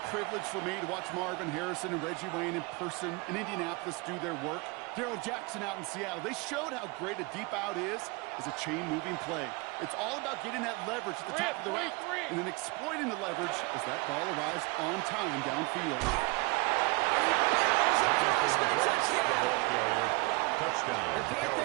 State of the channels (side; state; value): left; quieter; 26.6 dB